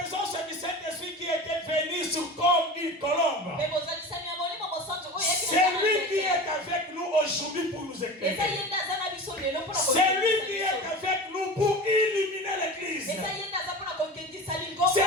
du Saint-Esprit qui était venu sur comme une colombe. C'est lui qui est avec nous aujourd'hui pour nous éclairer. C'est lui qui est avec nous pour illuminer l'église.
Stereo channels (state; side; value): normal; both; correlation 0.32